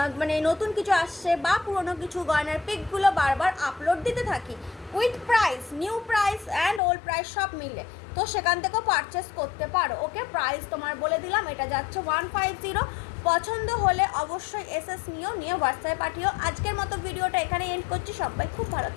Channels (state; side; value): drops out; right; at 6.8 s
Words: মানে নতুন কিছু আসছে বা পুরনো কিছু গয়নার পিকগুলো বারবার আপলোড দিতে থাকি, with price, new price and old price সব মিলে, তো সেখান থেকেও পারচেস করতে পারো। ওকে, প্রাইস তোমার বলে দিলাম, এটা যাচ্ছে 150। পছন্দ হলে অবশ্যই এসএস নিয়ে হোয়াটসঅ্যাপে পাঠিও। আজকের মতো ভিডিওটা এখানে এন্ড করছি। সবাই খুব ভালো